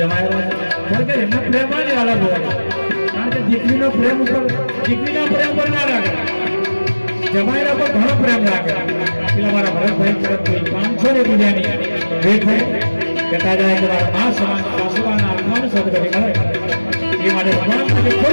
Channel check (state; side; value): inverted; both; correlation -1.00